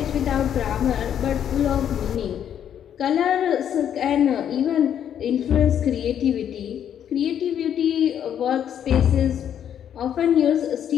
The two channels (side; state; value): right; quieter; 9.4 dB